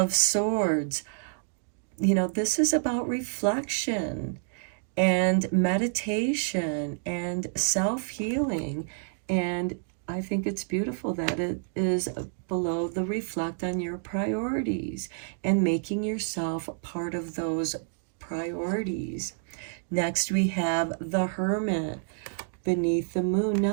Swords. You know, this is about reflection and meditation and self-healing. And I think it's beautiful that it is below the reflect on your priorities and making yourself part of those priorities. Next, we have the Hermit beneath the moon.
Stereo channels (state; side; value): silent; left; digital silence